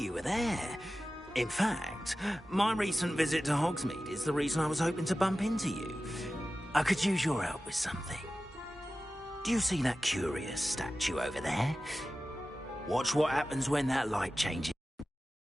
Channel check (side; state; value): both; normal; correlation 0.95